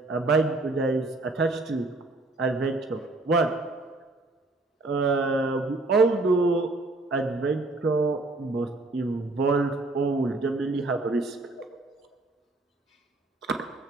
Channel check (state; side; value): quieter; left; 3.0 dB